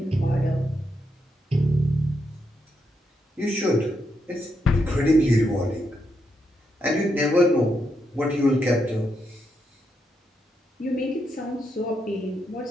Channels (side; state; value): both; normal; correlation 0.81